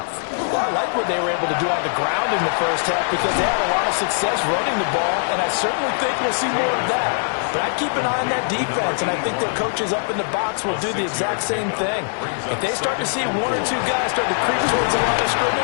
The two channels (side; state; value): right; silent; digital silence